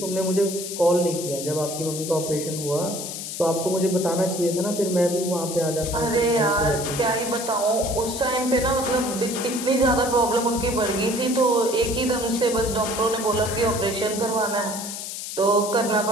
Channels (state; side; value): noise; left; hiss, 7 dB below the sound